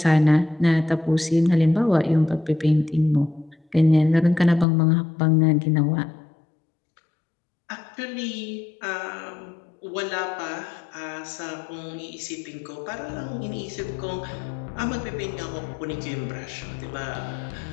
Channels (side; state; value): right; drops out; at 4.7 s